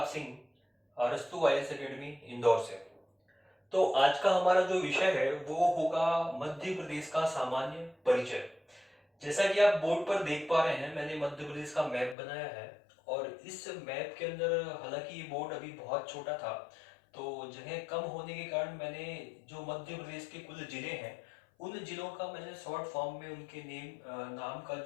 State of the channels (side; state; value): right; drops out; at 12.2 s